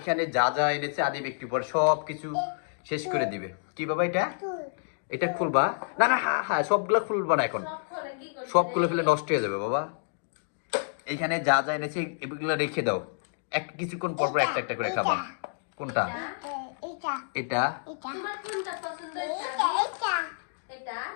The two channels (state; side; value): silent; right; digital silence